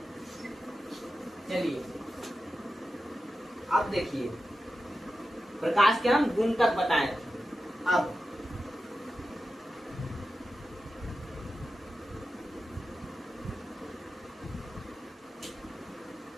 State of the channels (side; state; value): both; normal; correlation 0.92